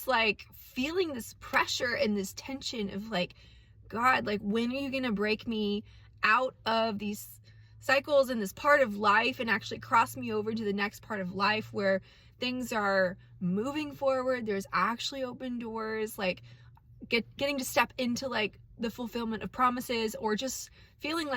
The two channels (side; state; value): both; identical; correlation 1.00